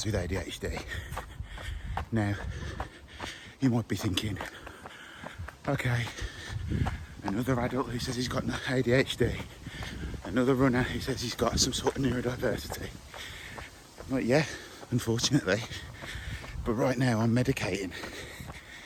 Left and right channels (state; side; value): identical; both; correlation 1.00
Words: with ADHD. Now, you might be thinking, okay, another adult who says he's got ADHD, another runner who says he's got some sort of neurodiversity. Like, yeah, unfortunately, but right now I'm medicating.